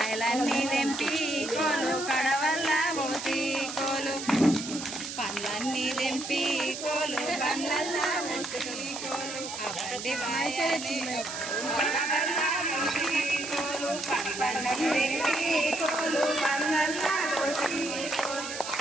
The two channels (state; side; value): noise; right; hiss, 8 dB below the sound